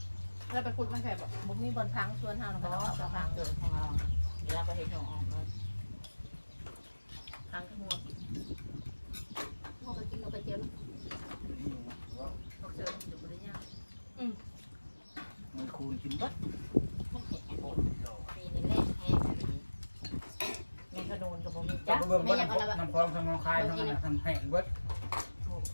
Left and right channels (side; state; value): both; inverted; correlation -1.00